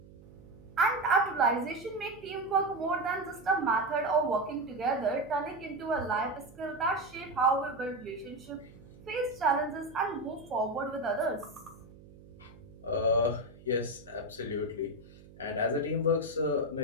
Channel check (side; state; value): right; noise; hum, 21 dB below the sound